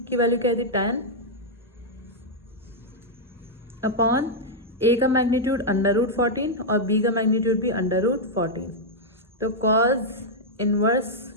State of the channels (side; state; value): both; normal; correlation -0.04